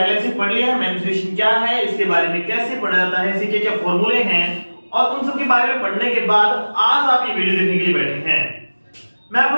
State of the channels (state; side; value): inverted; both; correlation -1.00